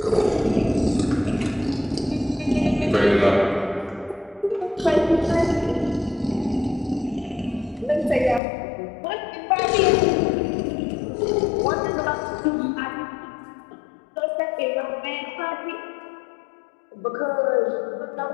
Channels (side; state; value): right; drops out; at 8.4 s